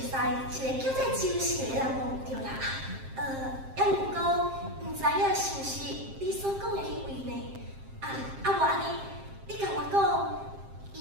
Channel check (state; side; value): late; left; 7.5 ms